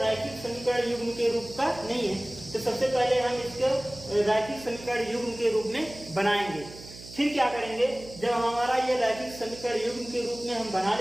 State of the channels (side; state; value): right; noise; hum, 16 dB below the sound